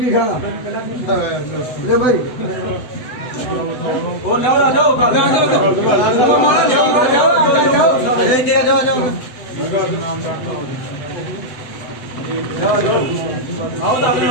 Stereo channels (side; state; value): right; late; 7.9 ms